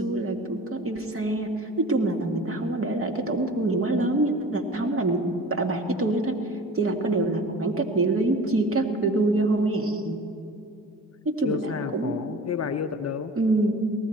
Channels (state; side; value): normal; both; correlation 0.41